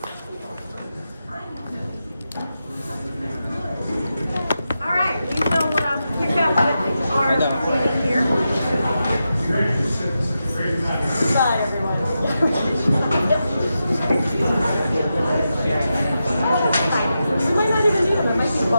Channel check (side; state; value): both; inverted; correlation -0.89